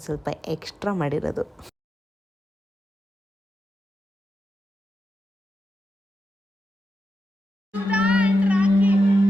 ಸ್ವಲ್ಪ ಎಕ್ಸ್ಟ್ರಾ ಮಾಡಿರೋದು.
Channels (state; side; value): normal; both; correlation 0.88